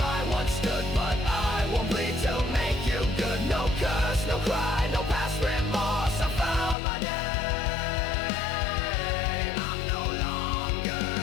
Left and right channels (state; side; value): drops out; right; at 6.8 s